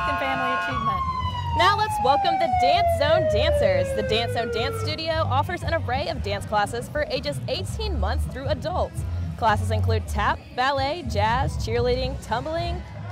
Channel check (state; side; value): identical; both; correlation 1.00